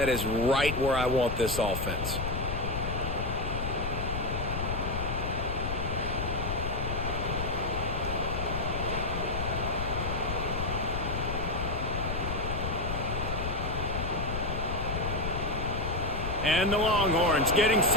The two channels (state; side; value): noise; left; rumble, 3 dB below the sound